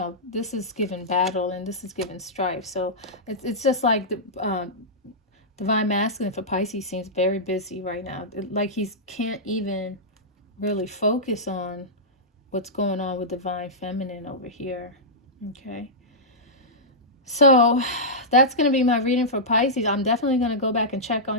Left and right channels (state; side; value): normal; both; correlation -0.13